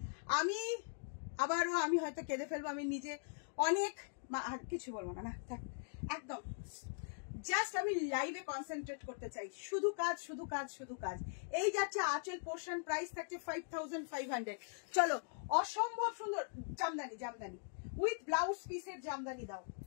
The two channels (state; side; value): silent; right; digital silence